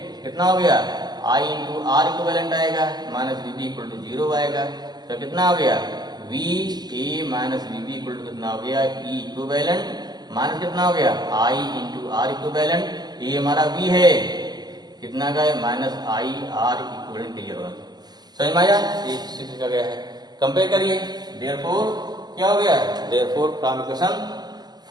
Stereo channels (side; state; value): left; late; 0.20 ms